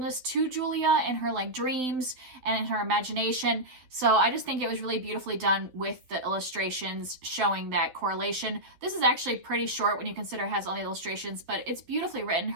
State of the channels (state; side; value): late; left; 12 ms